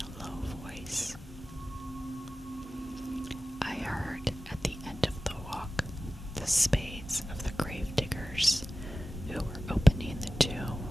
a low voice. I heard at the end of the walk the spades of the grave diggers who were opening the tomb.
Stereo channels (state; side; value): normal; both; correlation 0.96